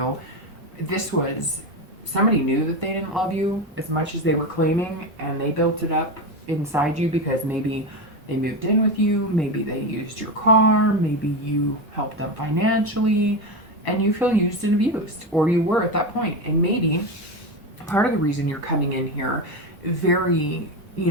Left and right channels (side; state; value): both; normal; correlation 0.16